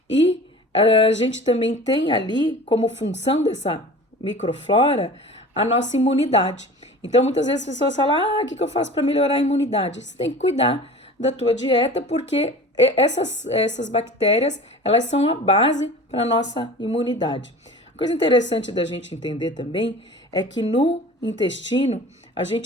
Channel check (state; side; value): normal; both; correlation 0.39